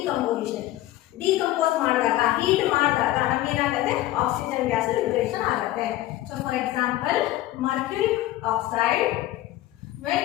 Decompose ಮಾಡಿದಾಗ, heat ಮಾಡಿದಾಗ ನಮಗೆ ಏನಾಗುತ್ತೆ? Oxygen gas liberation ಆಗುತ್ತೆ. So for example, mercuric oxide, when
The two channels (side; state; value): right; quieter; 15.5 dB